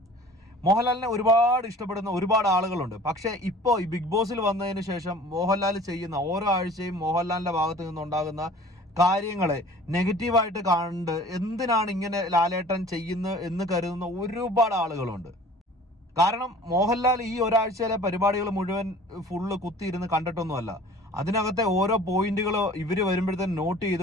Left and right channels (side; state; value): both; normal; correlation 0.47